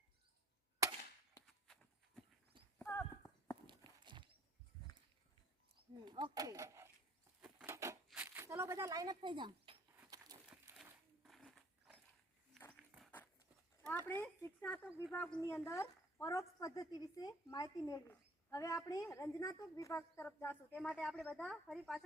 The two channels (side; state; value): both; normal; correlation 0.58